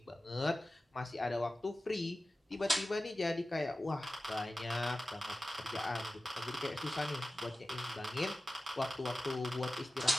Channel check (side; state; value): both; normal; correlation 0.95